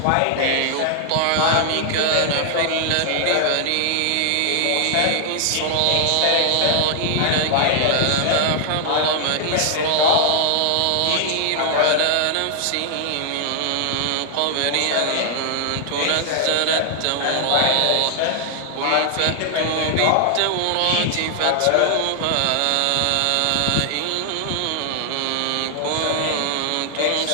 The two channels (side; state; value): both; different; correlation 0.00